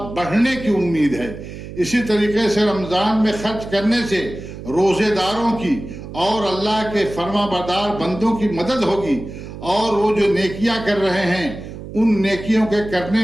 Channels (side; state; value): right; noise; hum, 12 dB below the sound